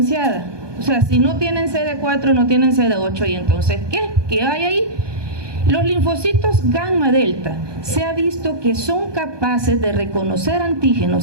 O sea, si no tienen CD4, no tienen CD8, ¿y entonces qué? ¿Qué hay ahí? Los linfocitos gamma delta se ha visto que son capaces de reconocer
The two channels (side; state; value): left; late; 1.2 ms